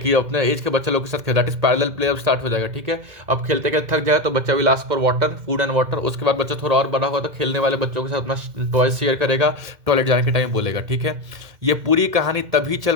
अपने एज के बच्चे लोग के साथ खेल, दैट इज पैरेलल प्ले अब स्टार्ट हो जाएगा, ठीक है। अब खेलते खेलते थक जाएगा तो बच्चा will ask for water, food and water. उसके बाद बच्चा थोड़ा और बड़ा होगा तो खेलने वाले बच्चों के साथ अपना टॉय शेयर करेगा, टॉयलेट जाने के टाइम बोलेगा, ठीक है। ये पूरी कहानी तभी चल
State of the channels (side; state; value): left; late; 2.1 ms